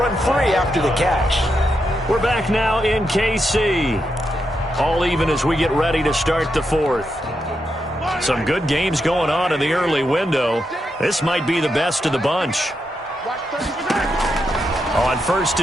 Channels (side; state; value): both; normal; correlation 0.84